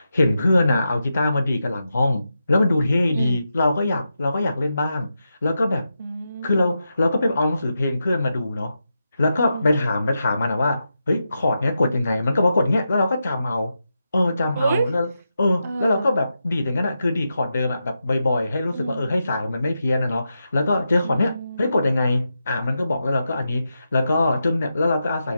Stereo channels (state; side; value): inverted; both; correlation -0.87